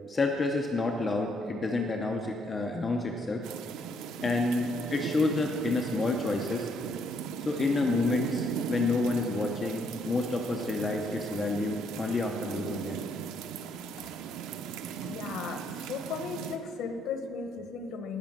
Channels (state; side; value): normal; both; correlation 0.71